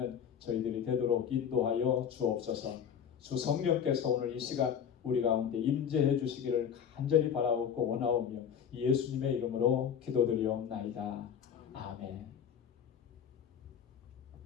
저희들이 되도록 인도하여 주옵소서. 주 성령께서 오늘 이 시간 우리 가운데 임재해 주시기를 간절히 바라옵고 원하오며 예수님의 이름으로 기도드리옵나이다. 아멘.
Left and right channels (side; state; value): right; quieter; 8.1 dB